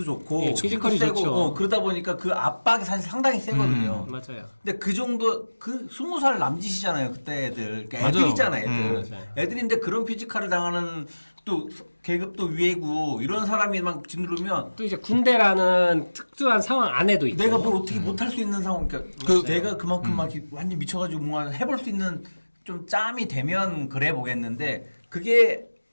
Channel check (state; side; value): inverted; both; correlation -1.00